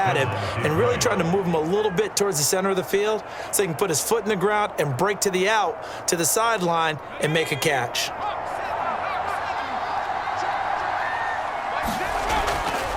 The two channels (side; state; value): both; identical; correlation 1.00